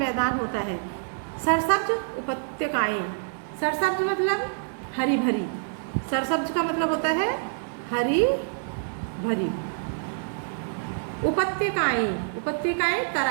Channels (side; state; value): left; silent; digital silence